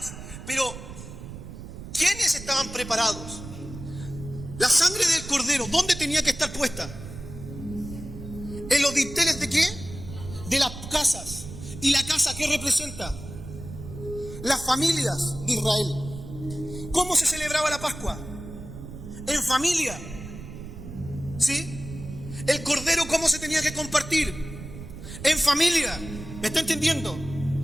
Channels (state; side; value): noise; right; rumble, 12 dB below the sound